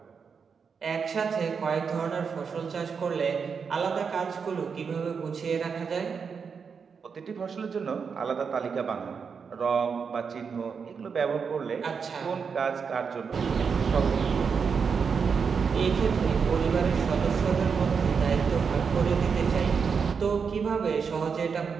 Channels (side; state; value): left; quieter; 5.9 dB